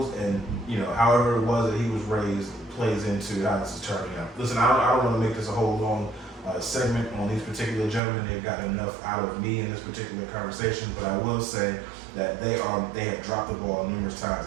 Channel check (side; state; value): left; drops out; at 8.0 s